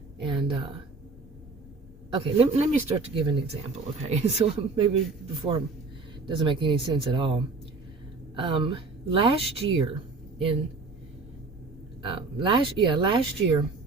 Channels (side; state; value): left; quieter; 3.9 dB